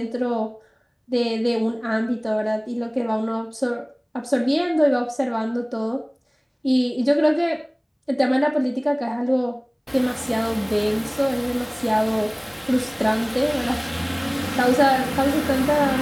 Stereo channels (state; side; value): identical; both; correlation 1.00